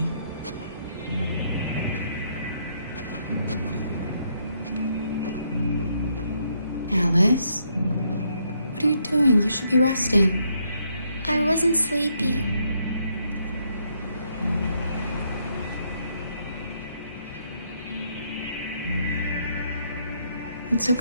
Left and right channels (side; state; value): both; inverted; correlation -0.74